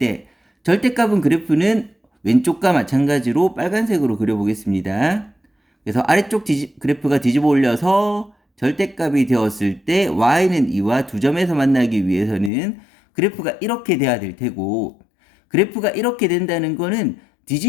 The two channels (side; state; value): right; drops out; at 12.5 s